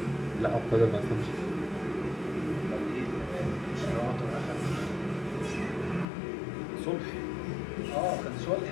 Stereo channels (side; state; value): right; drops out; at 6.1 s